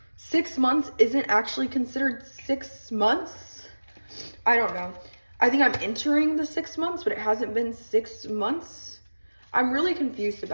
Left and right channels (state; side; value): inverted; both; correlation -1.00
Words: 6 months isn't actually considered 6 months. I don't know. I think I'm entering the 6 months, but it hasn't been 6 months. I'm really confused